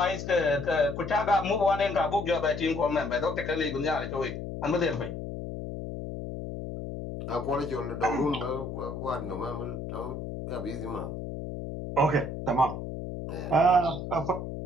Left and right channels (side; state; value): left; noise; hum, 7 dB below the sound